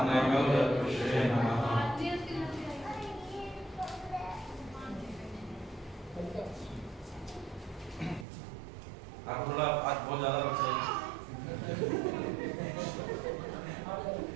नामोदपुषे नमः। आप थोड़ा आज बहुत ज्यादा बच्चे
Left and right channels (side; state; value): left; drops out; at 8.2 s